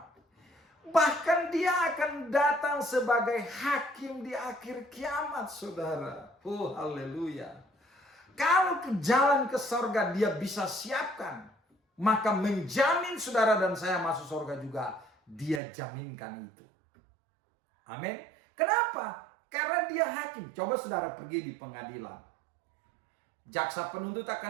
Bahkan dia akan datang sebagai hakim di akhir kiamat, saudara. Oh, haleluya. Kalau ke jalan ke sorga dia bisa siapkan, maka menjamin saudara dan saya masuk sorga juga, dia jaminkan itu. Amin. Kenapa? Karena dia hakim. Coba saudara pergi di pengadilan. Jaksa penuntut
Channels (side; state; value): left; drops out; at 15.6 s